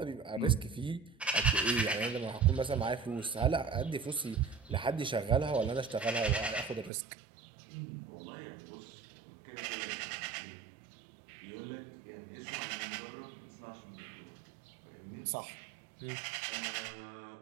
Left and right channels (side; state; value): left; drops out; at 6.9 s